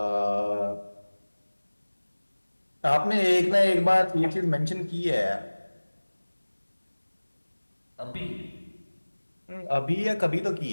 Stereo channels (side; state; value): both; inverted; correlation -1.00